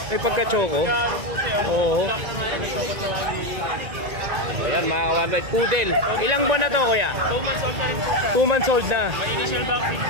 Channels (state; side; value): late; left; 2.1 ms